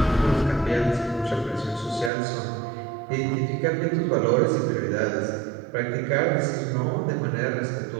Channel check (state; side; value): drops out; left; at 2.1 s